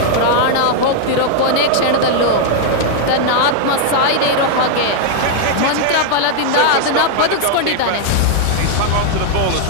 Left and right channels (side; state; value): both; different; correlation -0.01